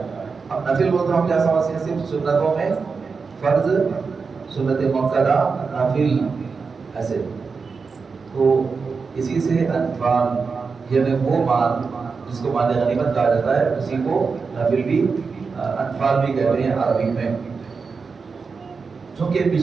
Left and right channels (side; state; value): left; quieter; 5.0 dB